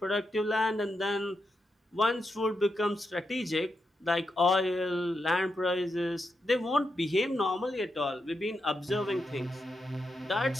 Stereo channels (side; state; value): both; normal; correlation 0.85